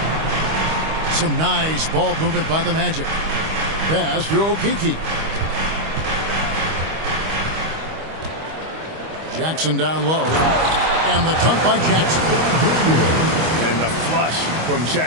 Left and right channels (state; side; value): late; left; 25 ms